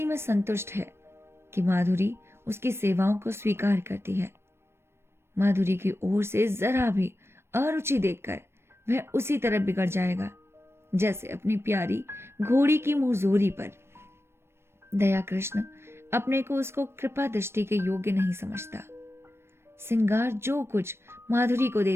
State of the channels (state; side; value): late; left; 0.12 ms